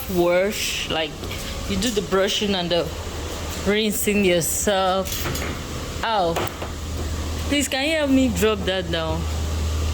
like you do the brushing and the rinsing yourself. Ow. Please, can you help me drop that down?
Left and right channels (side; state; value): both; identical; correlation 1.00